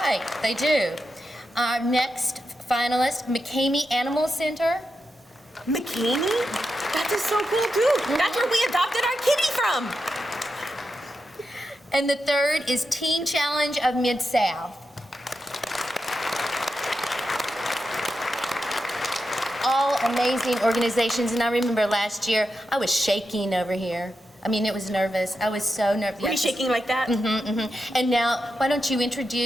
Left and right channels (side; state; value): both; normal; correlation 0.88